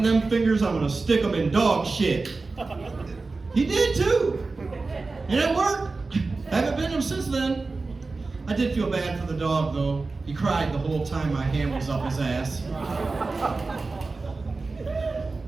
them fingers, I'm gonna stick them in dog shit. He did too. And it worked. Haven't been him since then. I did feel bad for the dog though. He cried the whole time my hand was up his ass.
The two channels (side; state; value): left; quieter; 3.8 dB